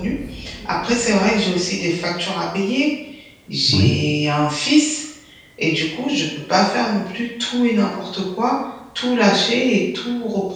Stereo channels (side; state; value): both; identical; correlation 1.00